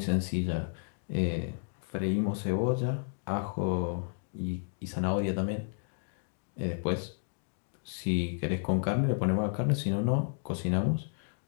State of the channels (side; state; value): right; silent; digital silence